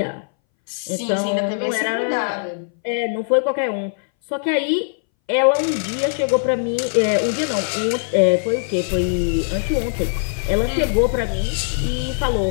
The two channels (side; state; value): right; silent; 62 dB below the other